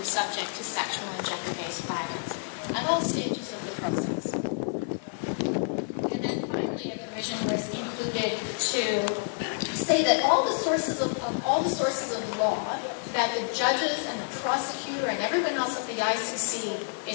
subject to sexual and gender-based violence at all stages of the process. And then finally, a provision was included to say that all the sources of law that the judges and the prosecutor and everyone else at the ICC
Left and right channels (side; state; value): right; silent; 58 dB below the other